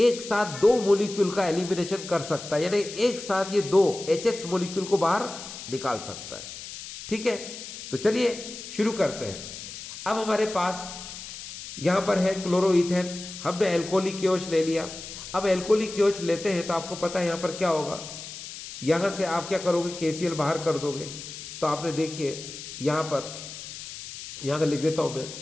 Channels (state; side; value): noise; left; hiss, 11 dB below the sound